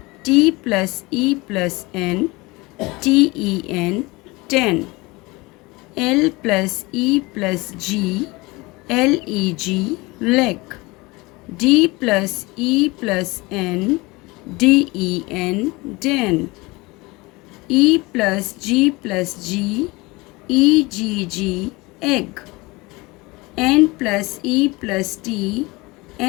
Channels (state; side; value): quieter; right; 23.3 dB